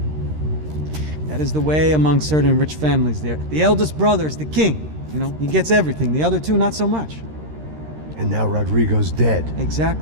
That is the way among certain rich families there. The eldest brother is the king. You know, he gets everything. The other two, not so much. And now Rodrigo's dead.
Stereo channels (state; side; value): late; left; 13 ms